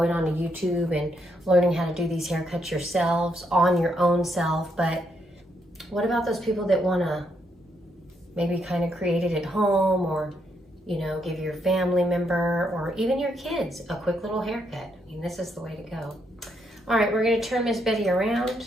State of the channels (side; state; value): both; normal; correlation 0.77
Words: on to YouTube and learning how to do these haircuts yourselves on your own self. But what about those people that want to maybe kind of create it at home, or you know, give your family member or even your kids a quick little haircut? I mean, this is the way to go. All right, we're going to turn Miss Betty around.